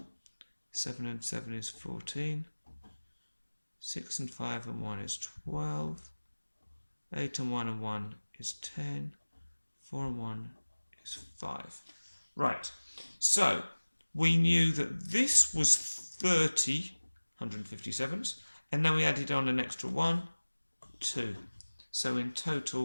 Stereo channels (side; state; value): both; inverted; correlation -1.00